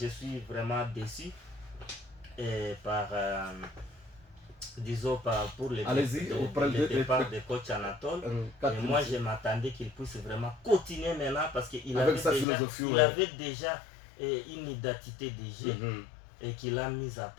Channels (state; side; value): drops out; right; at 12.5 s